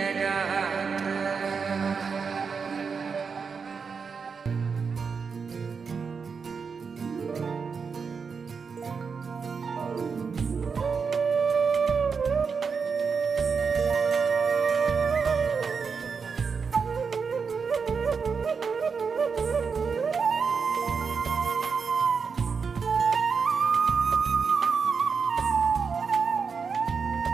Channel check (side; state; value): left; quieter; 5.6 dB